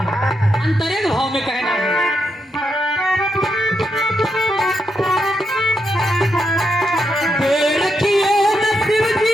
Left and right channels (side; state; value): both; normal; correlation 0.82